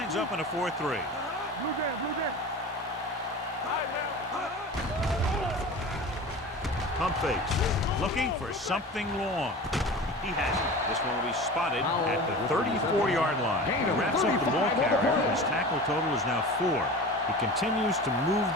up in a 4-3. Blue jam, blue jam. Pump fakes. Looking for something long. He has it. This one will be spotted at the 34-yard line. He wraps up the ball carrier. His tackle total is now 4. He continues to move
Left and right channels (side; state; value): both; normal; correlation 0.34